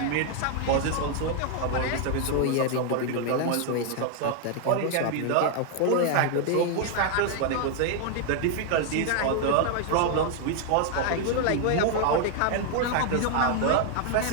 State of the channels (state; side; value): different; both; correlation 0.00